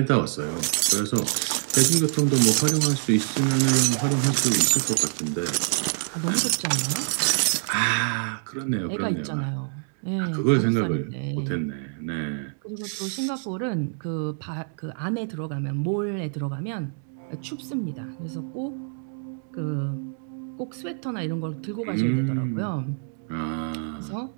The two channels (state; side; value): silent; left; 61 dB below the other